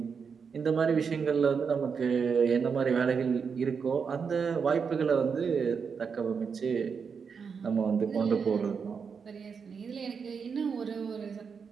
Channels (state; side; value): quieter; left; 6.0 dB